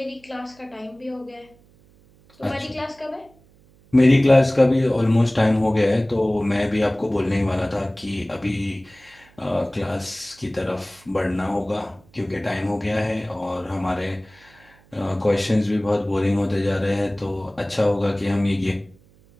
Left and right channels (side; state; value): right; noise; hum, 29 dB below the sound